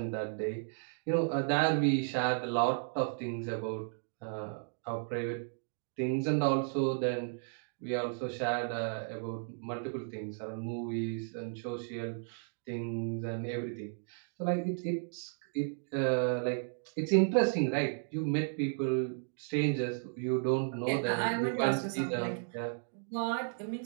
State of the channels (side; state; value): left; silent; digital silence